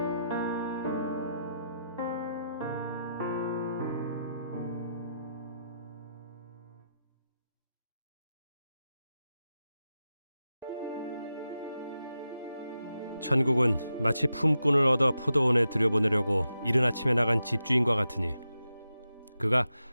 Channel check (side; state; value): both; inverted; correlation -0.87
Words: 천국은 마치 품꾼을 얻어 포도원에 들여보내려고 이른 아침에 나간 집주인과 같으니 그가